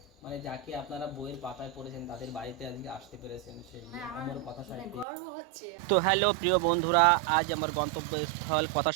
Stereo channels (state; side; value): drops out; left; at 5.1 s